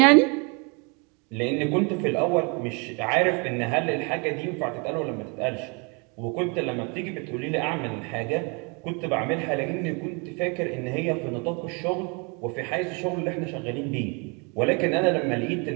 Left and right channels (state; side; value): quieter; left; 32.5 dB